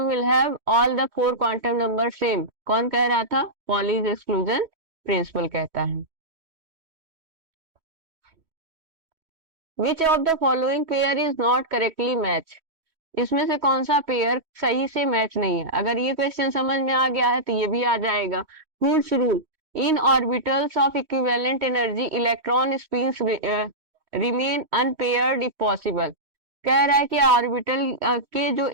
will have all the 4 quantum number same, कौन कह रहा था, पॉलीज एक्सक्लूजन प्रिंसिपल कहता है। Which of the following pair is not correctly match, इसमें से कौन सा पेयर सही से मैच नहीं है। अगर ये क्वेश्चन समझ में आ गया है तो ये भी आ जाएगा। Hund's rule, in orbitals of equivalent energy electron spins remain unpaired if possible, कह रहा है कि ऑर्बिटल के जो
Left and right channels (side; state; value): left; late; 3.1 ms